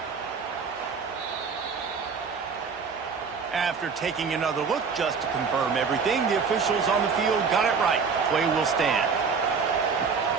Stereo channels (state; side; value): quieter; left; 5.5 dB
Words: After taking another look just to confirm everything, the officials on the field got it right. Play will stand.